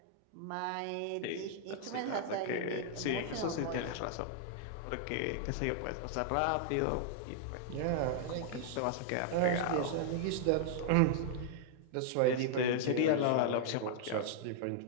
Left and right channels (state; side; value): different; both; correlation -0.01